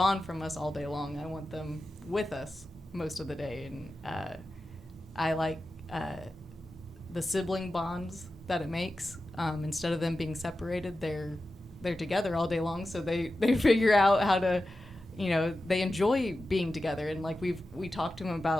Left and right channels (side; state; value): both; normal; correlation 0.93